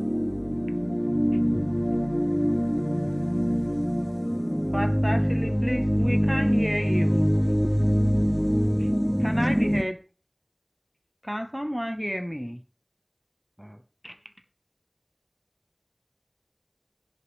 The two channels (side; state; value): both; identical; correlation 1.00